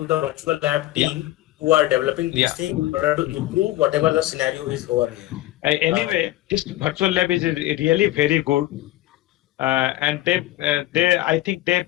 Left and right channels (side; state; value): right; quieter; 16.1 dB